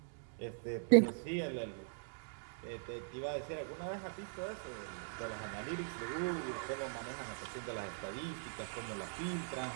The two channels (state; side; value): silent; left; digital silence